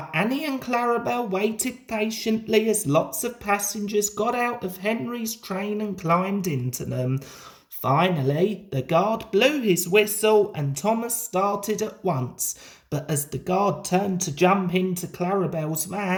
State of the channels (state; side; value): identical; both; correlation 1.00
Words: Annie and Clarabel waited patiently as lots of passengers got out of Henry's train and climbed into them. Finally, the guard blew his whistle and Thomas started at once, but as the guard turned to jump into Clarabel's